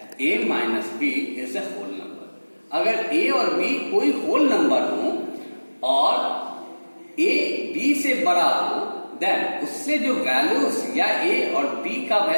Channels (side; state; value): both; inverted; correlation -1.00